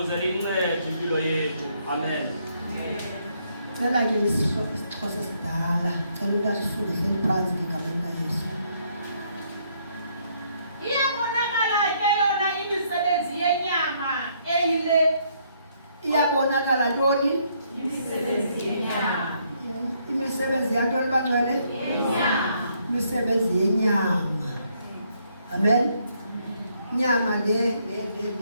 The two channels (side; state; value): both; inverted; correlation -0.71